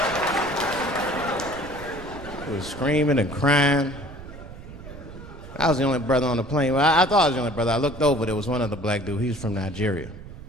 He was screaming and crying. I was the only brother on the plane. Well, I thought I was the only brother. I looked over, there was one other black dude. He was from Nigeria.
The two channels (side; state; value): right; noise; rumble, 14 dB below the sound